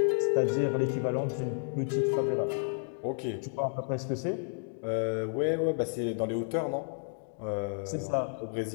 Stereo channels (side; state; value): right; silent; digital silence